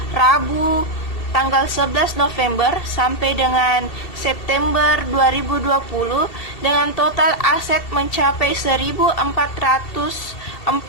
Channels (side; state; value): right; late; 2.7 ms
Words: Rabu tanggal 11 November sampai dengan September 2020 dengan total aset mencapai 1.447,85